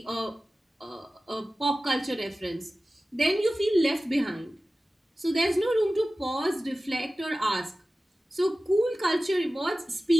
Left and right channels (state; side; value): normal; both; correlation 0.96